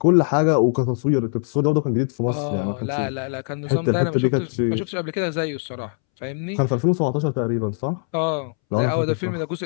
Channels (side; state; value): right; silent; 64 dB below the other